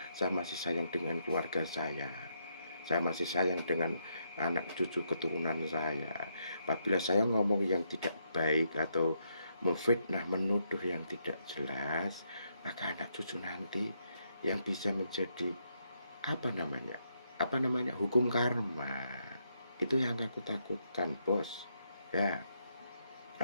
Saya masih sayang dengan keluarga saya masih sayang dengan anak cucu keturunan saya. Apabila saya ngomong yang tidak baik atau memfitnah, menuduh yang tidak jelas, maka anak cucu nanti yang bisa menjadi apa namanya hukum karma. Itu yang aku takutkan, bos ya.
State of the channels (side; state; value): both; inverted; correlation -0.78